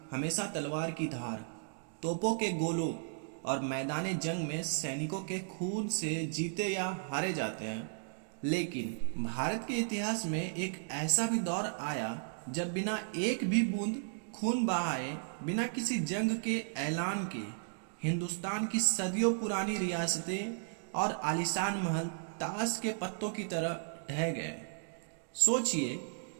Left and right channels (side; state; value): left; silent; digital silence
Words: हमेशा तलवार की धार, तोपों के गोलों और मैदान जंग में सैनिकों के खून से जीते या हारे जाते हैं। लेकिन भारत के इतिहास में एक ऐसा भी दौर आया जब बिना एक भी बूंद खून बहाए, बिना किसी जंग के ऐलान के, हिंदुस्तान की सदियों पुरानी रियासतें और आलीशान महल ताश के पत्तों की तरह ढह गए। सोचिए,